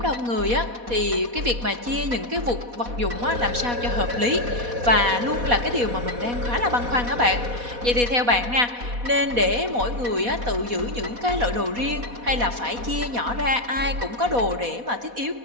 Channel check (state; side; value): late; left; 4.1 ms